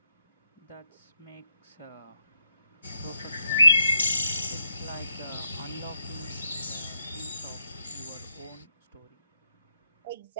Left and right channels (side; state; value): both; inverted; correlation -0.79